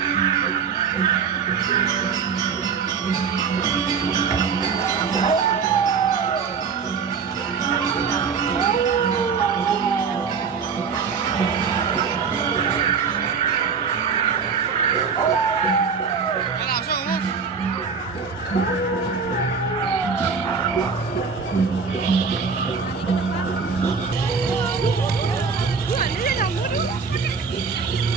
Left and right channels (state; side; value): quieter; left; 5.7 dB